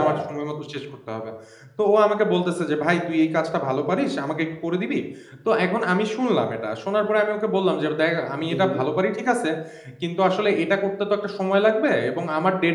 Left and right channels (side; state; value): both; identical; correlation 1.00